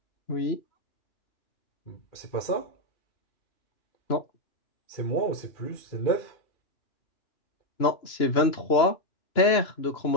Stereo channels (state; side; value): late; right; 2.9 ms